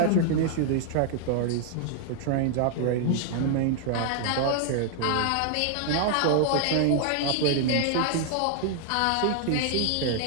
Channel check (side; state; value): both; different; correlation 0.00